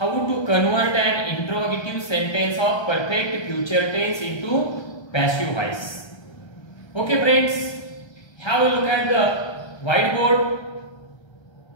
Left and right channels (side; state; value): right; late; 1.3 ms